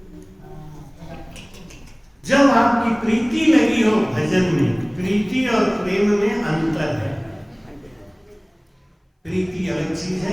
जब आपकी प्रीति लगी हो भजन में, प्रीति और प्रेम में अंतर है। प्रीति अलग चीज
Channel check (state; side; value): identical; both; correlation 1.00